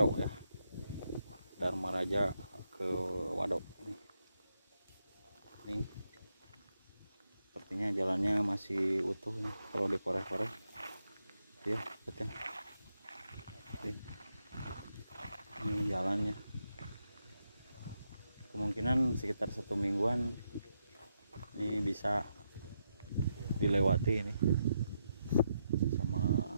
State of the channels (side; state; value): both; inverted; correlation -0.82